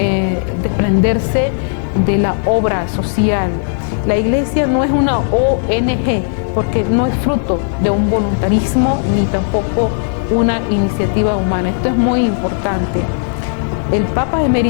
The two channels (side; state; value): right; silent; digital silence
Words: desprenderse de la obra social. La Iglesia no es una ONG, porque no es fruto de un voluntarismo ni tampoco una iniciativa humana. Esto es muy importante. El Papa